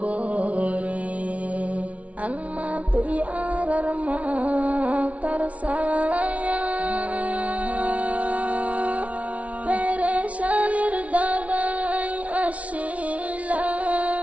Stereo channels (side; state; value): left; late; 0.066 ms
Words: আম্মা তুই আর মা তার ছায়া পেরেশানির দাগায় আসিলা